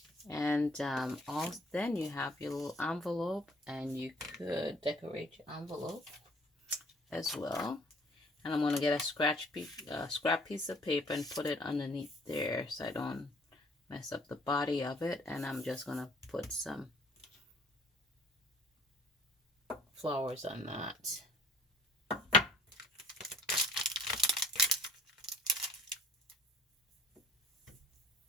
And then you have your little envelope, and you could decorate your envelope as well. And I'm going to get a scrap piece of paper and put it underneath there so I don't mess up the body of it. And I'm just going to put some flowers on that.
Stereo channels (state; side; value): normal; both; correlation 0.56